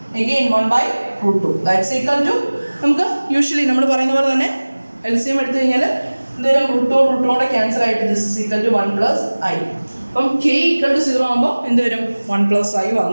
again 1 by √2. That's equal to നമുക്ക് usually നമ്മൾ പറയുന്ന പോലെ തന്നെ LCM എടുത്തു കഴിഞ്ഞാൽ എന്തെങ്കിലും √2 cancel ആയിട്ട് this is equal to 1 plus I. അപ്പം k equal to 0 ആകുമ്പോൾ എന്ത് വരും? 1 plus I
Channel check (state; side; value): inverted; both; correlation -1.00